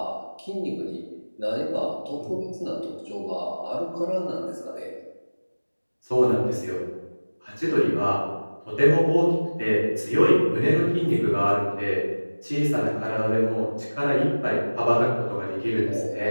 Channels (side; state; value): both; inverted; correlation -1.00